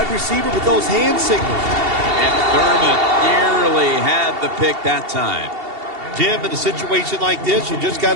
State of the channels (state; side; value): late; left; 2.7 ms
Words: receiver with those hand signals. And Thurman nearly had the pick that time. Jim, in a situation like this, you just got